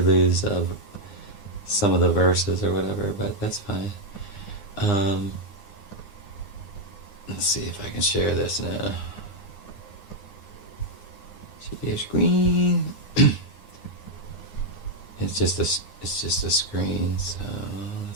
lose some of the verses or whatever. But that's fine. Let's see if I can share this now. Share your screen. It's just a screen. So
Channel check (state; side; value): late; right; 9.8 ms